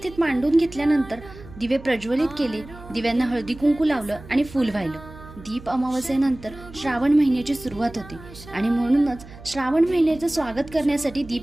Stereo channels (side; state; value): right; noise; hum, 17 dB below the sound